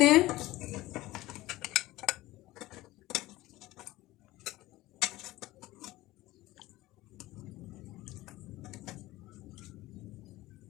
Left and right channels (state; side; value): quieter; right; 17.8 dB